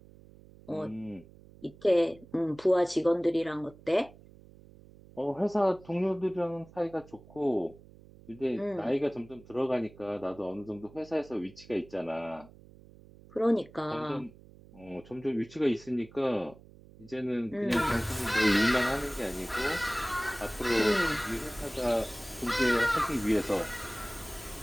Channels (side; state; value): right; noise; hum, 22 dB below the sound